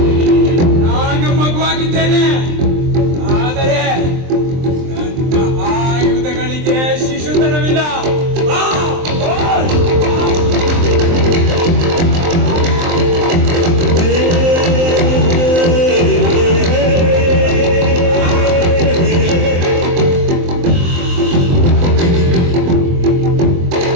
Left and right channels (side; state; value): left; late; 23 ms